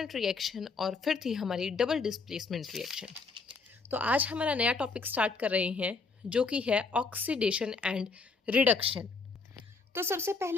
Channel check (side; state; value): right; quieter; 4.4 dB